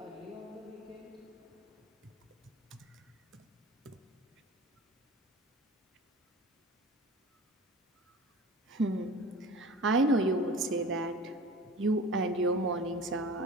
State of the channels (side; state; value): both; normal; correlation 0.38